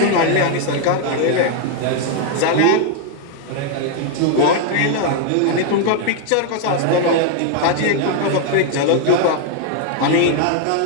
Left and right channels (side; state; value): both; different; correlation 0.00